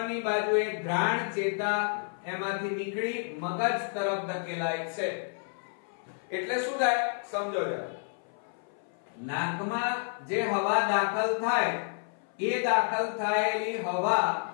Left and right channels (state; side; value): silent; right; 58 dB below the other